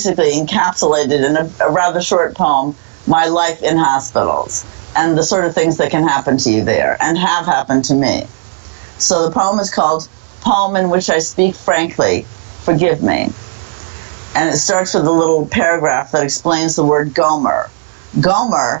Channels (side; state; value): left; silent; digital silence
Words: encapsulated in a rather short poem, my life in hospitals and the sort of things that can happen to you there and have happened to me. So the poem is called Poem in Which I Speak Frankly, Forgive Me. And it starts with a little paragraph that explains the word Gomer.